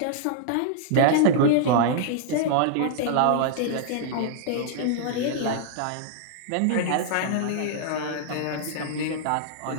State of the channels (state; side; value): different; both; correlation -0.01